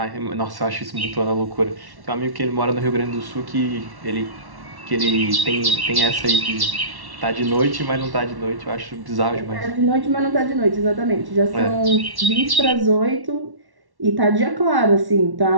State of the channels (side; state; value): left; late; 1.1 ms